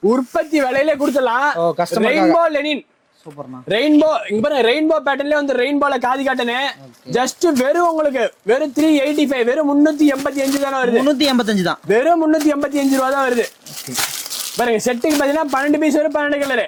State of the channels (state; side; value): identical; both; correlation 1.00